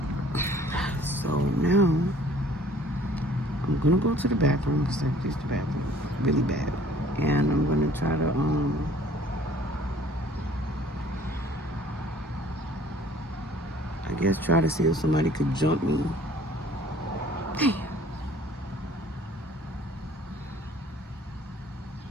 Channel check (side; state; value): both; normal; correlation 0.54